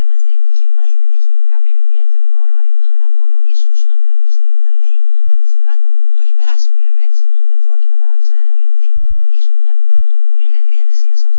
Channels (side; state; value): both; inverted; correlation -0.41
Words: μας δίνει. Και πάλι δεν έχει κάποιο ιδιαίτερο νόημα, παρά μόνο ίσως αν κάποιος θέλει να λέει η γάτα μου το έχει περάσει που λέμε έτσι και δεν πρόκειται να ξαναμολυνθεί. Ίσως μια πολύ μικρή αξία σε